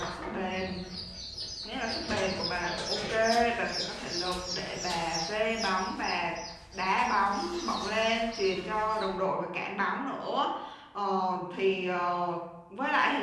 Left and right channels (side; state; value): both; identical; correlation 1.00